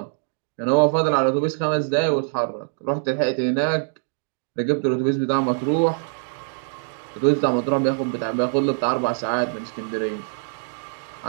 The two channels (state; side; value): silent; left; digital silence